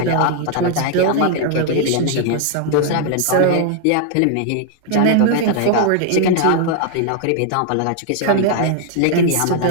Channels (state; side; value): different; both; correlation 0.00